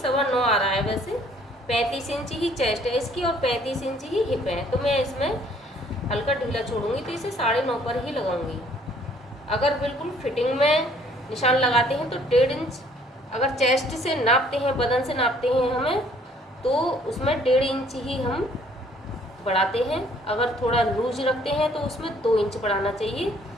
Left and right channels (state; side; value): normal; both; correlation 0.60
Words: आ रहा है वैसे। 35 इंच ही चेस्ट है इसकी और 35 इंच ही हिप है, तो मैं इसमें हल्का ढीला छोड़ूंगी, तो इसे 9.5 पर ही लगाऊंगी। अगर बिल्कुल फिटिंग में निशान लगाते हैं तो 1.5 इंच, अगर चेस्ट से नापते हैं, बदन से नापते हैं हमें, तो उसमें 1.5 इंच ही हम बढ़ाते हैं। अगर थोड़ा लूज रखते हैं तो उसमें 2 इंच बढ़ाना चाहिए।